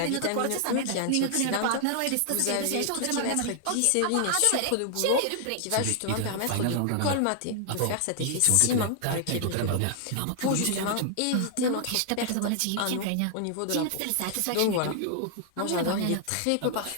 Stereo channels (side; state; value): both; different; correlation 0.00